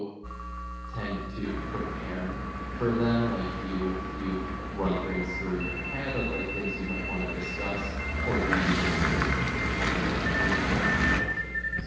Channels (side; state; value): both; identical; correlation 1.00